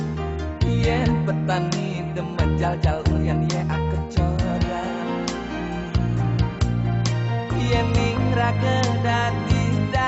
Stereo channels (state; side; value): identical; both; correlation 1.00